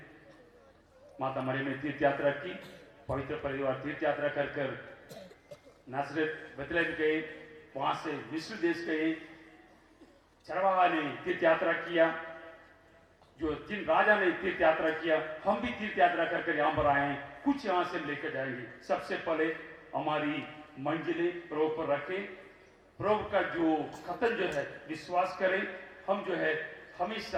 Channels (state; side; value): identical; both; correlation 1.00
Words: माता मरियम ने तीर्थ यात्रा की, पवित्र परिवार तीर्थ यात्रा कर कर नासरत बेथलेहम गए, वहां से मिस्र देश गए, चरवाहा ने तीर्थ यात्रा किया, जो जिन राजा ने तीर्थ यात्रा किया, हम भी तीर्थ यात्रा कर कर यहाँ पर आए हैं। कुछ यहाँ से लेकर जाएंगे। सबसे पहले हमारी मंजिलें प्रभु पर रखें, प्रभु का जो कथन जो है विश्वास करें। हम जो है